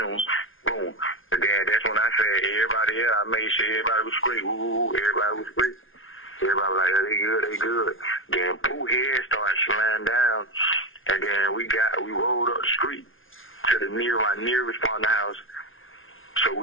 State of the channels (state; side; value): late; right; 0.58 ms